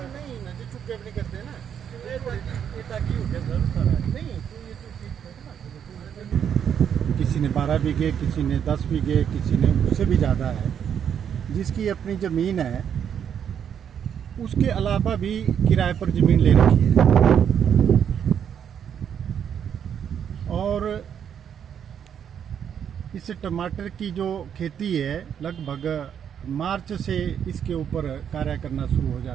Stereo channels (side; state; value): left; quieter; 8.5 dB